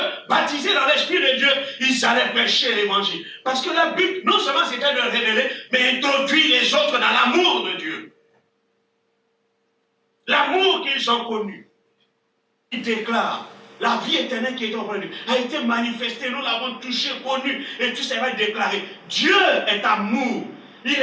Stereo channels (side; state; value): both; identical; correlation 1.00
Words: baptisés dans l'Esprit de Dieu, ils allaient prêcher l'évangile. Parce que leur but, non seulement c'était de révéler, mais introduire les autres dans l'amour de Dieu. L'amour qu'ils ont connu. Ils déclarent, la vie éternelle qui est en nous a été manifestée, nous l'avons touché, connu, et tout ça va être déclaré. Dieu est amour. Il